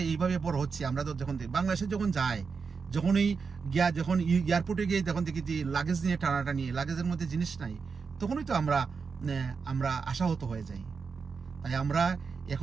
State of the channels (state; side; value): quieter; left; 5.3 dB